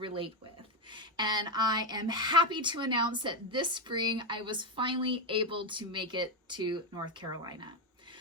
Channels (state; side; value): normal; both; correlation 0.09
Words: with. And I am happy to announce that this spring I was finally able to make it to North Carolina.